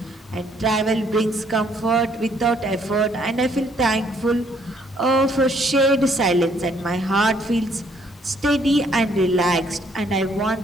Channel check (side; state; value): both; normal; correlation 0.66